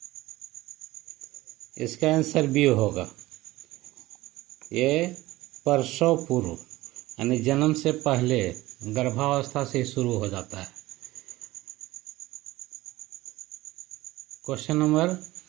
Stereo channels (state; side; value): quieter; left; 18.1 dB